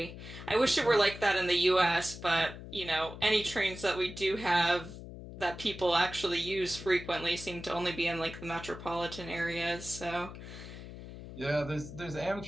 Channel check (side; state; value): left; noise; hum, 12 dB below the sound